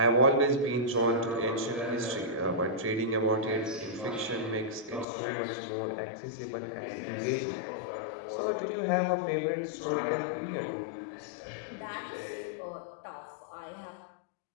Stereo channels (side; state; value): right; drops out; at 5.1 s